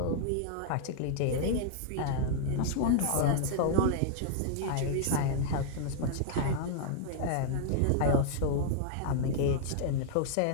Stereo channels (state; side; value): different; both; correlation -0.01